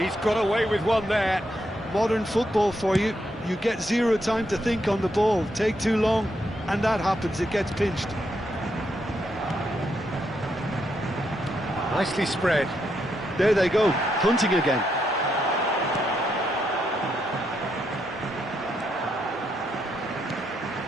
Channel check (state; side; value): normal; both; correlation 0.79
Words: got away with one there. Modern football for you. You get zero time to think on the ball. Take too long, and that happens. It gets pinched. Nicely spread. There they go, hunting again.